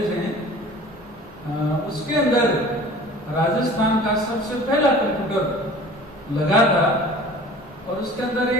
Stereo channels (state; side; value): normal; both; correlation 0.44